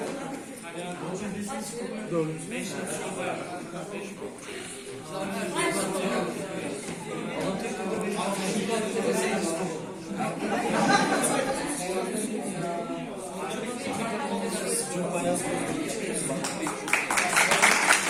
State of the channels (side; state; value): both; identical; correlation 1.00